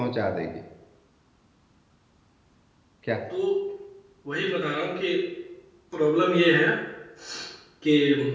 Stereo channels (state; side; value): identical; both; correlation 1.00